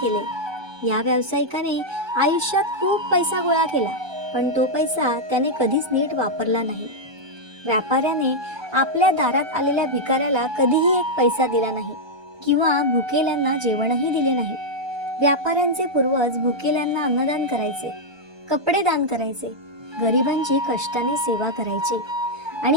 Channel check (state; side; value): late; left; 1.2 ms